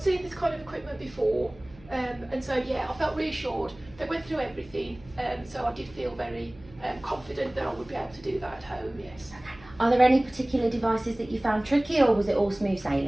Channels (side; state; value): right; noise; hum, 23 dB below the sound